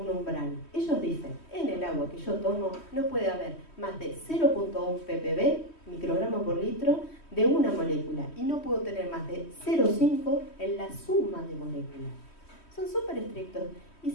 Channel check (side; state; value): right; late; 3.1 ms